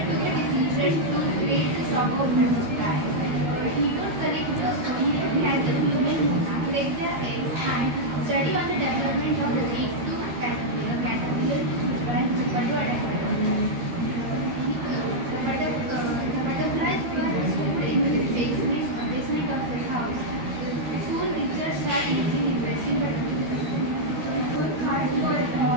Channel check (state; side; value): late; left; 13 ms